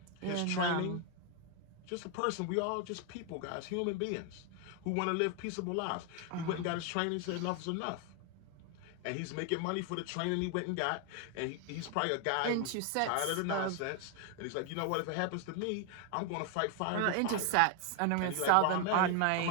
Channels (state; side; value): different; both; correlation 0.01